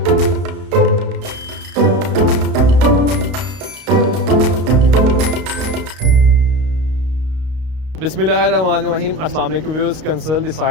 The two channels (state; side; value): late; left; 32 ms